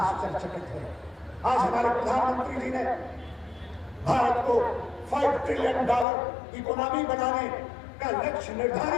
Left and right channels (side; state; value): right; drops out; at 6.1 s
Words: है। आज हमारे प्रधानमंत्री जी ने भारत को $5 ट्रिलियन इकोनॉमी बनाने का लक्ष्य